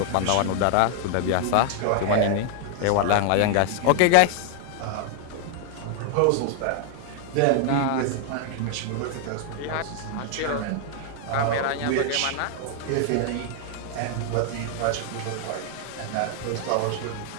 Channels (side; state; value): both; different; correlation 0.00